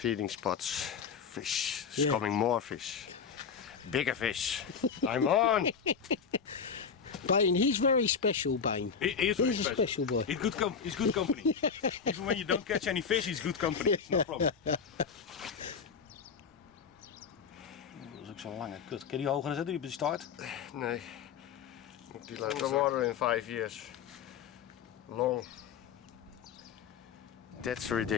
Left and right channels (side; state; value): right; quieter; 6.4 dB